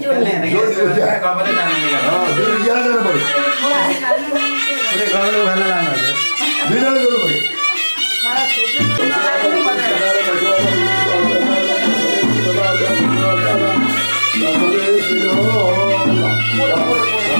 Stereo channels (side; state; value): both; inverted; correlation -1.00